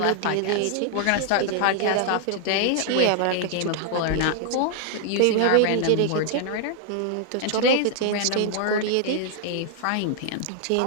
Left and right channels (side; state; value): both; different; correlation 0.00